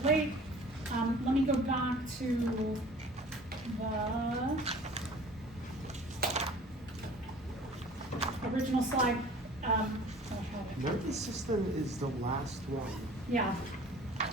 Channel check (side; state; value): both; normal; correlation 0.47